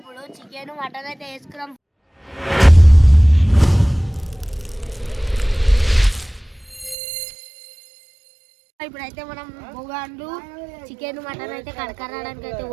చికెన్ మటన్ అయితే వేసుకున్నాం. ఇప్పుడైతే మనం బొగాండ్లు చికెన్ మటన్ అయితే కడకరాడానికి అయితే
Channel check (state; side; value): drops out; left; at 7.0 s